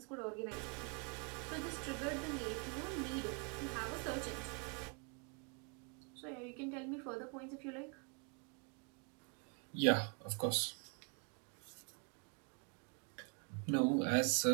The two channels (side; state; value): left; quieter; 36.6 dB